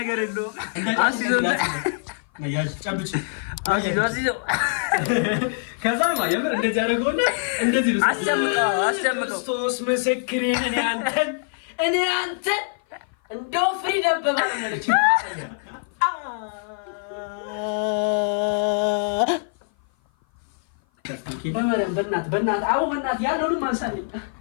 የለውም አስይዘው ከዛ የምር እንደዚህ አደረገውና እንደዚህ ነው አስጨምቀው ክርስቶስ ምስክሬን እኔ አንተን እንደው ፍሪደም በማለች በእናትህ አዎ በእናትህ ያለውንም አንሳልኝ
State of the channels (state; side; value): silent; right; 56 dB below the other